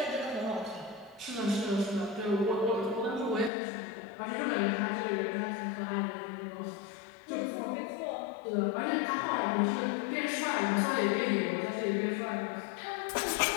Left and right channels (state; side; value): drops out; right; at 3.5 s